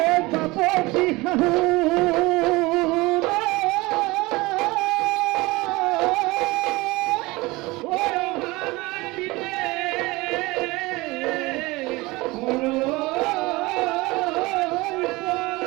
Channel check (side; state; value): left; quieter; 22.2 dB